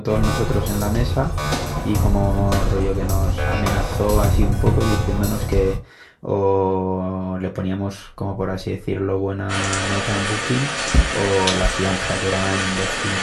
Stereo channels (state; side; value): identical; both; correlation 1.00